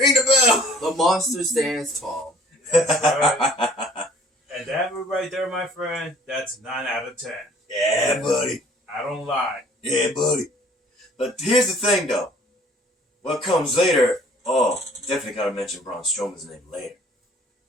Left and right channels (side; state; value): both; normal; correlation 0.55